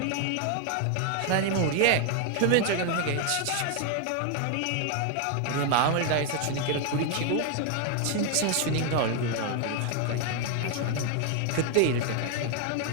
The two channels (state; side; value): different; both; correlation 0.00